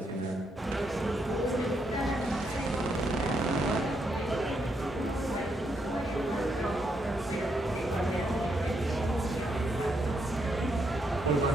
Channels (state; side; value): normal; both; correlation 0.78